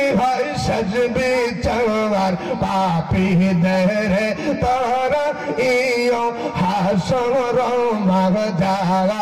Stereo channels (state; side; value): identical; both; correlation 1.00